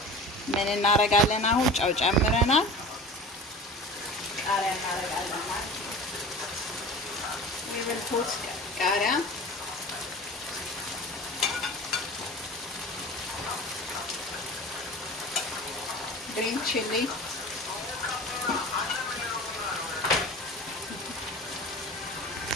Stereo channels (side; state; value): both; normal; correlation 0.37